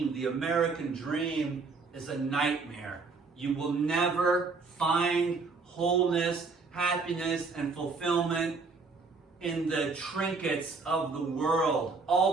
The American dream is a nightmare. You will never find wholeness, happiness, and fulfillment in the trinkets of the world.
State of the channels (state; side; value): quieter; left; 4.4 dB